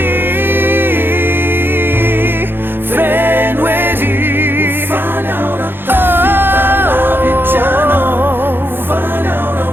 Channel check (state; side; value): late; left; 0.10 ms